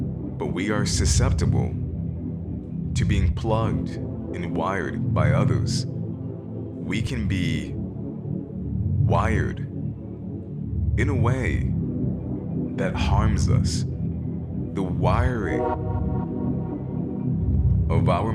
we are susceptible to being plugged and wired by others. We can be wired in a way that harms us. The wiring of our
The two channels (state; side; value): identical; both; correlation 1.00